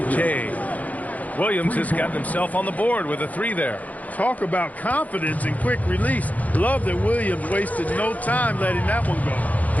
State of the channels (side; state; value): right; late; 0.075 ms